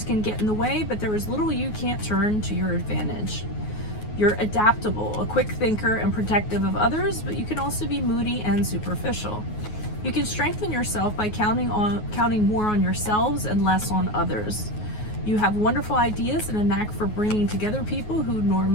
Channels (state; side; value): late; right; 9.4 ms